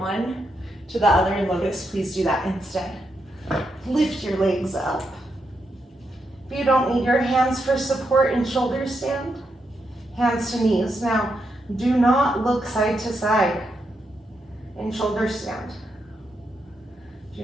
to the other in lotus, please do that instead. Lift your legs up. If you don't need your hands for support in shoulder stand, hands to knees. Now, do not look side to side in shoulder stand.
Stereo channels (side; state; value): both; normal; correlation 0.82